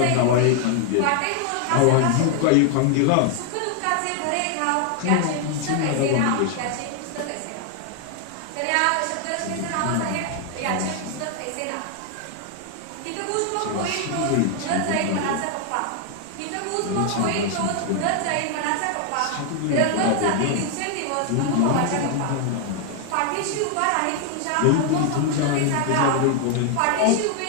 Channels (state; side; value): different; both; correlation 0.00